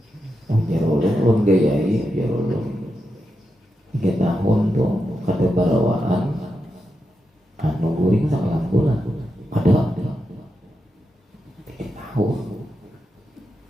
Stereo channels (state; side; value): normal; both; correlation 0.86